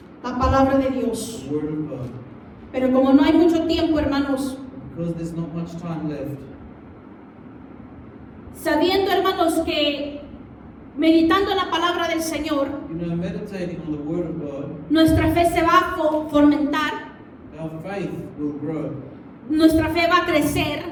la palabra de Dios. the Word of God. Pero como no hay mucho tiempo, hermanos, Because there's not much time left. sabiendo, hermanos, que meditando en la palabra del Señor, Meditating on the Word of God, nuestra fe se va a fomentar, our faith will grow. nuestra fe va a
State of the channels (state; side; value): identical; both; correlation 1.00